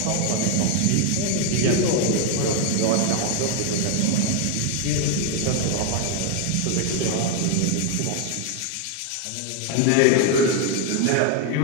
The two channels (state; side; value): different; both; correlation 0.00